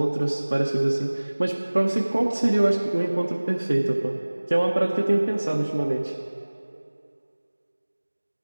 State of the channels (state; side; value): inverted; both; correlation -1.00